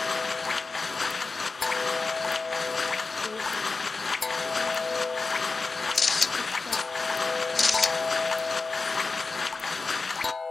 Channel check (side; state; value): right; quieter; 4.0 dB